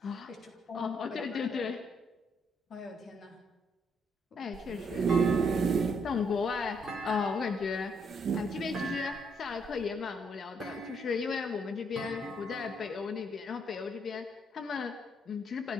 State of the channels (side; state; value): both; normal; correlation 0.72